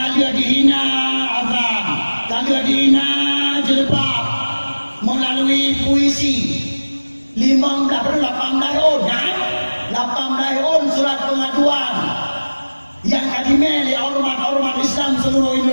dihina azab, kalian dihina jilbab melalui puisi. 18 on surat pengaduan yang kadimeli ormat Islam seluruh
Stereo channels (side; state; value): both; inverted; correlation -1.00